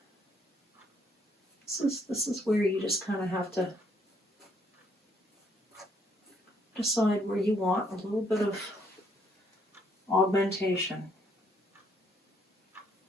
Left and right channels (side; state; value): both; normal; correlation 0.69